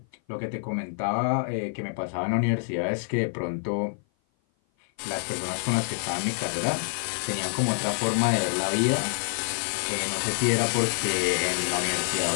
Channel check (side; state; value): right; silent; 56 dB below the other